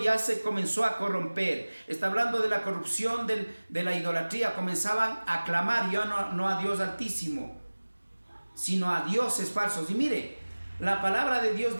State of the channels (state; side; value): inverted; both; correlation -1.00